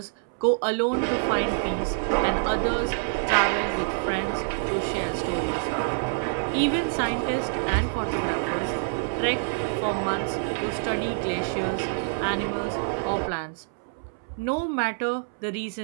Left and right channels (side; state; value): left; silent; 61 dB below the other